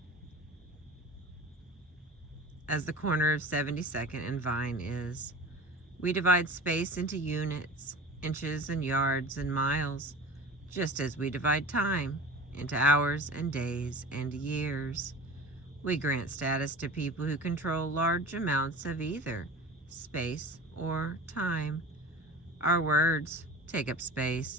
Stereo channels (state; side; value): normal; both; correlation 0.36